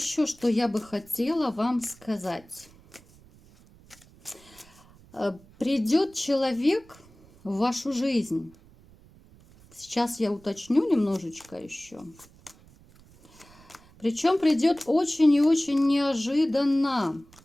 что я бы хотела вам сказать? Придет человек в вашу жизнь. Сейчас я уточню немножечко еще. Причем придет очень и очень неожиданно.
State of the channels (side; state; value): right; noise; rumble, 26 dB below the sound